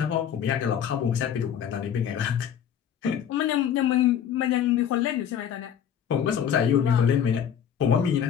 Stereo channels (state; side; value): quieter; right; 8.9 dB